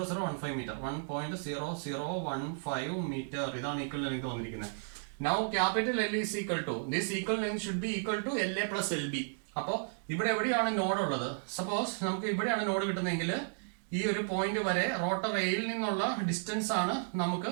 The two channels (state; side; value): silent; left; digital silence